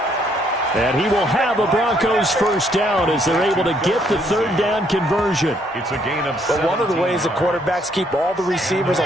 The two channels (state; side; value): normal; both; correlation 0.69